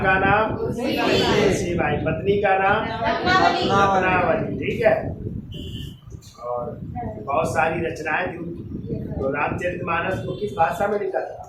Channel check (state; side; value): identical; both; correlation 1.00